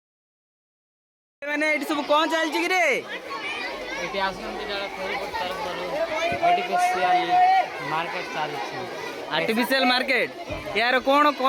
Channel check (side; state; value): both; identical; correlation 1.00